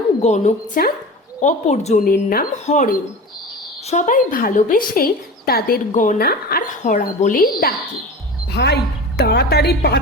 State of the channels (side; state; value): both; normal; correlation 0.32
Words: গণকচাঁদ, অপরজনের নাম হরেন। সবাই ভালোবেসে তাদের গনা আর হরা বলেই ডাকে। ভাই তাড়াতাড়ি পা